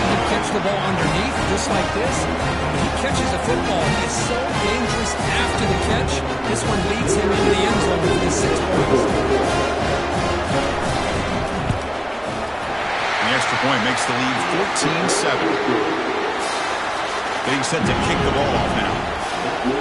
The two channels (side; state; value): both; identical; correlation 1.00